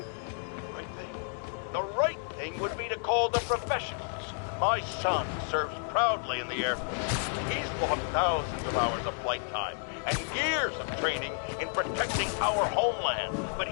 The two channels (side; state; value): right; silent; 57 dB below the other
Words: Right thing? The right thing would be to call the professionals. My son serves proudly in the Air Force. He's lost thousands of hours of flight time and years of training in protecting our homeland. But